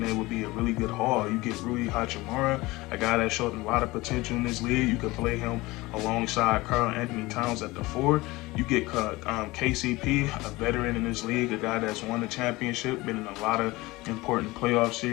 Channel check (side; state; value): right; quieter; 20.8 dB